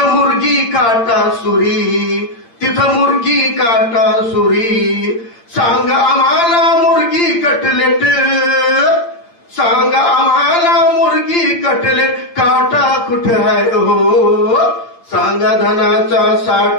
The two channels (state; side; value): late; right; 8.7 ms